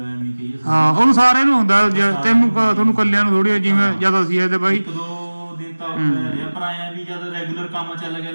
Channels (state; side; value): inverted; both; correlation -1.00